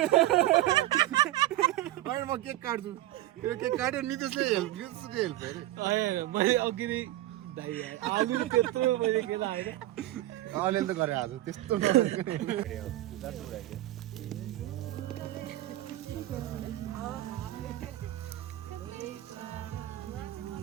होइन म केक काट्छु यो केक काट्यो नितेशले हेल्प अरे मैले अघि नै आलु त्यत्रो मैले के लाग्यो अलिअलि त गरे आज त्यस्तो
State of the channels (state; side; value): quieter; left; 15.3 dB